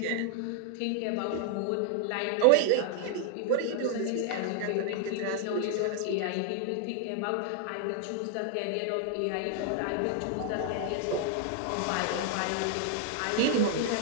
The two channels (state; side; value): different; both; correlation 0.00